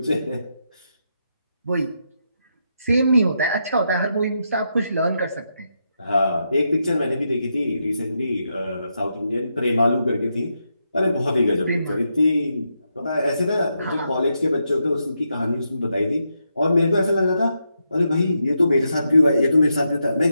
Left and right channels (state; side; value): inverted; both; correlation -0.83